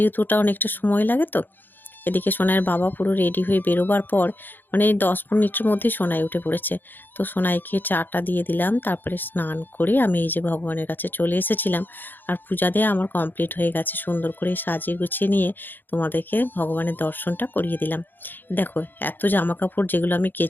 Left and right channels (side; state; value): right; late; 0.091 ms